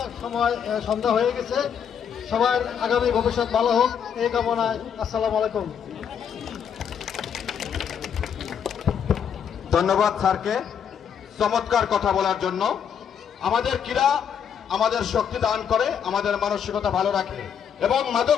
সময় সন্ধ্যা হয়ে গেছে। সবার আগামী ভবিষ্যৎ ভালো হোক এই কামনায়। আসসালামু আলাইকুম। ধন্যবাদ স্যারকে চমৎকার কথা বলার জন্য। আমাদের ক্রীড়া আমাদের শক্তি দান করে, আমাদের মানসিকতা ভালো রাখে এবং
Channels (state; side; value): quieter; right; 7.9 dB